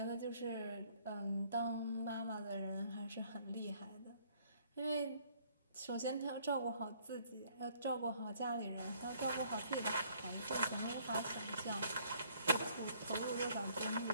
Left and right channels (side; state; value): both; inverted; correlation -0.62